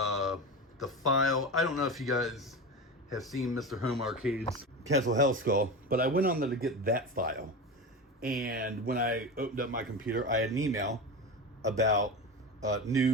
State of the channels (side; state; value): both; normal; correlation 0.24